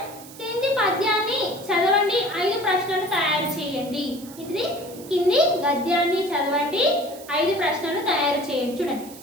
కింది పద్యాన్ని చదవండి, 5 ప్రశ్నలు తయారు చేయండి. ఇది కింది గద్యాన్ని చదవండి, 5 ప్రశ్నలు తయారు చేయండి. చూడండి,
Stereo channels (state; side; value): noise; right; hiss, 18 dB below the sound